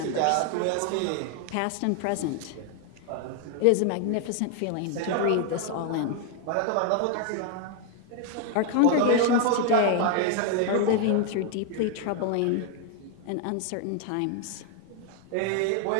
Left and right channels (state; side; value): different; both; correlation 0.00